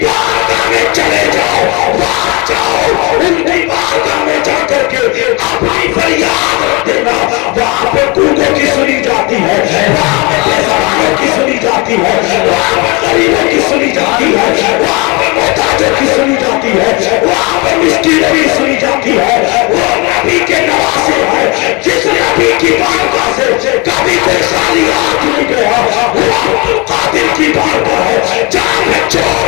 بارگاہ میں چلے جاؤ، وہاں جاؤ، ان کی بارگاہ میں جا کر کے اپنی فریاد رکھ دینا، وہاں پہ گونگوں کی سنی جاتی ہے، وہاں پہ بے زبانوں کی سنی جاتی ہے، وہاں پہ غریبوں کی سنی جاتی ہے، وہاں پہ محتاجوں کی سنی جاتی ہے، وہاں پہ مسکینوں کی سنی جاتی ہے۔ وہ نبی کے نواسے ہیں، جس نبی کی بارگاہ سے کبھی کوئی خالی ہاتھ نہیں گیا، وہ عبد القادر کی بارگاہ ہے، جہاں پہ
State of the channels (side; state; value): right; quieter; 27.9 dB